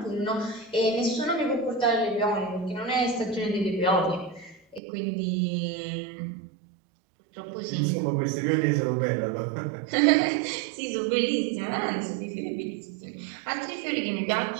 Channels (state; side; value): drops out; left; at 4.8 s